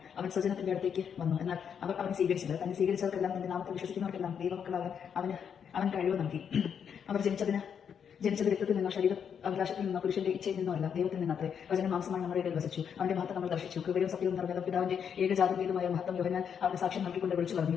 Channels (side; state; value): right; quieter; 7.6 dB